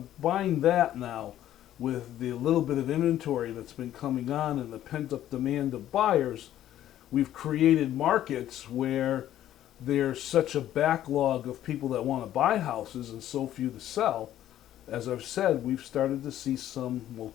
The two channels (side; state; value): right; quieter; 12.3 dB